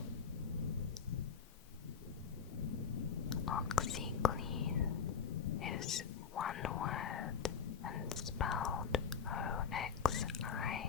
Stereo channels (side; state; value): right; quieter; 6.8 dB